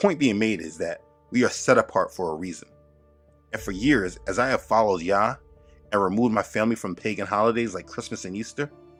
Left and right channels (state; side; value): identical; both; correlation 1.00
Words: being made is that we are set apart for a reason. And for years, as I have followed Yah and removed my family from pagan holidays like Christmas and Easter,